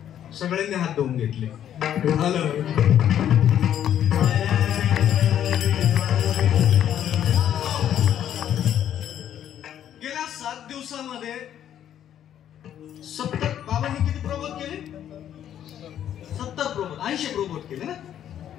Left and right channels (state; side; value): quieter; right; 10.4 dB